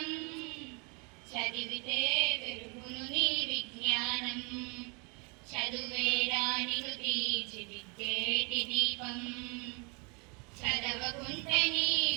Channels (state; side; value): quieter; left; 32.5 dB